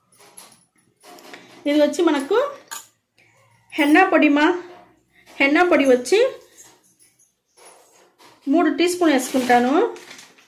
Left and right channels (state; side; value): identical; both; correlation 1.00